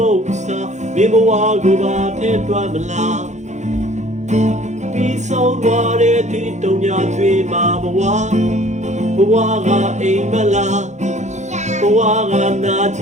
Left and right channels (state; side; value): late; left; 0.34 ms